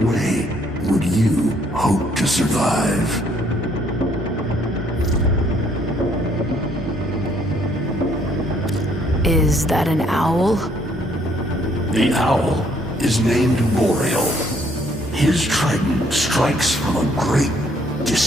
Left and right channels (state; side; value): normal; both; correlation 0.66